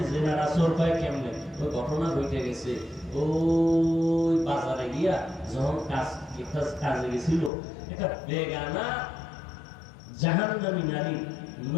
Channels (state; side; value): drops out; right; at 7.5 s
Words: জিনার আসর পায় কেমনে? ওই ঘটনা ঘটে গেছে, ওই বাজারে গিয়া যখন কাজে গেছিল, একটা বেগানা জাহান্নামী নারীর